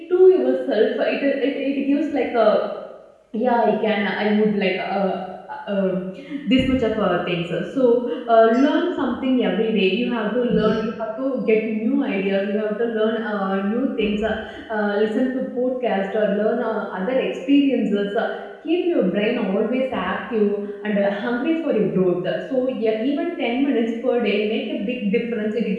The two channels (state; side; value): identical; both; correlation 1.00